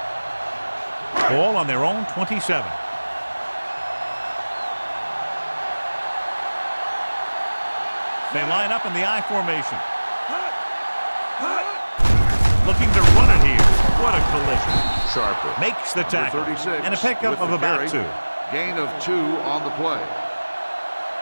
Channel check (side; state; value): both; inverted; correlation -1.00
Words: Ball on their own 27. They line up in the I formation. Looking to run it here. What a collision. Sharper makes the tackle. And a pickup of about 2. Gain of 2 on the play.